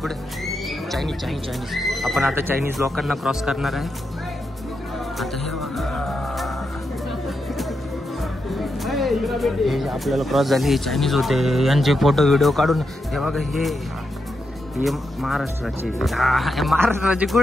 चायनीज. आपण आता चायनीज लोकांना क्रॉस करणार आहे. आता हे आपल्याला क्रॉस झाले हे चायनीज होते. यांचे फोटो व्हिडिओ काढून हे बघा. हे महाराष्ट्राचे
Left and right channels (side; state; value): both; normal; correlation 0.85